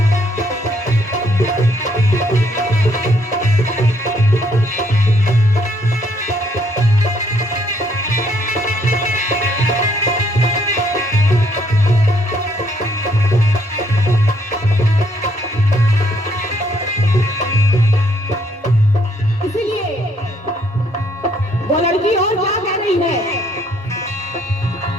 वो लड़की और क्या कह रही है,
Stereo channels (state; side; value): normal; both; correlation 0.68